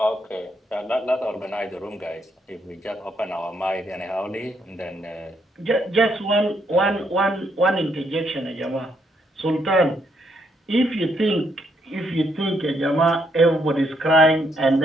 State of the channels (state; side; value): normal; both; correlation 0.74